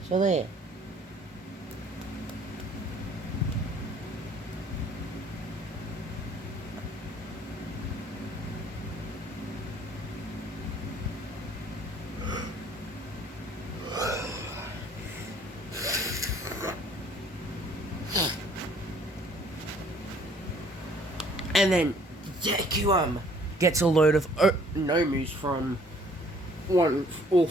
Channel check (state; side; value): normal; both; correlation 0.58